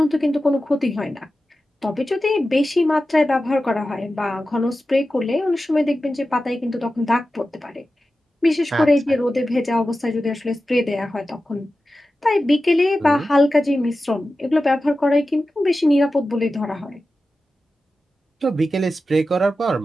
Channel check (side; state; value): both; normal; correlation 0.93